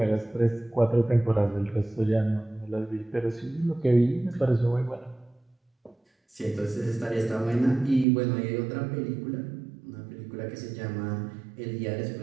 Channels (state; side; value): drops out; left; at 8.1 s